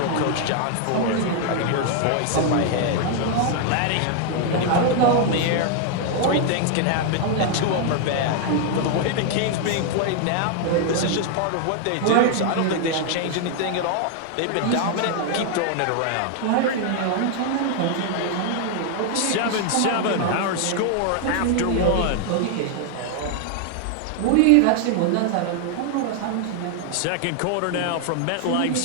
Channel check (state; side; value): different; both; correlation 0.00